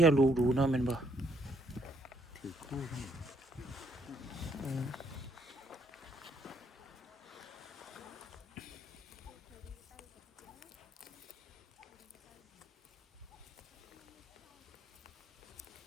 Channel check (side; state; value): both; normal; correlation 0.70